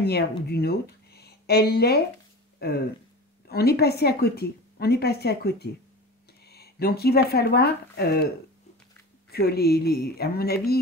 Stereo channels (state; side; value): normal; both; correlation 0.33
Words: ou d'une autre, elle est... on est passé à côté. On est passé à côté. Donc il va falloir que à mon